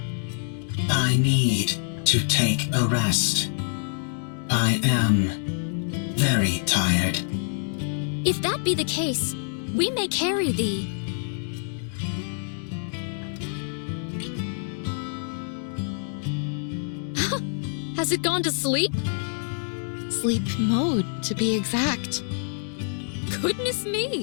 I need to take a rest. I am very tired. If that be the case, we may carry thee. Has it gone to sleep? Sleep mode, to be exact. Goodness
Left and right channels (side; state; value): right; silent; digital silence